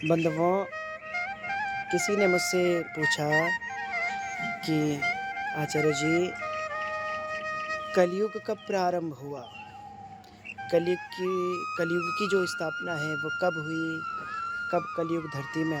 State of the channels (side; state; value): both; identical; correlation 1.00